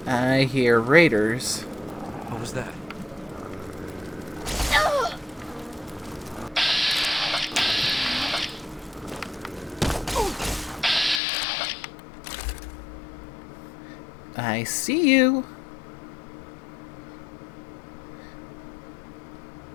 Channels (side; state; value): right; drops out; at 11.2 s